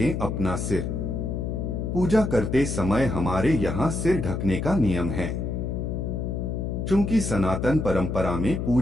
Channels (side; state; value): left; noise; hum, 2 dB below the sound